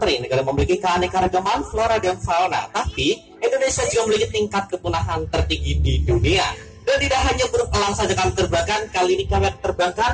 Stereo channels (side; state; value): both; identical; correlation 1.00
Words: negara memiliki keanekaragaman flora dan fauna. Tapi Indonesia juga memiliki tingkat kepunahan tertinggi di dunia. Dan tidak hanya burung elang saja kami terbangkan, kali ini kami